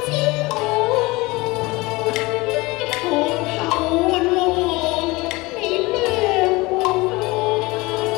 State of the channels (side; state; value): right; quieter; 22.6 dB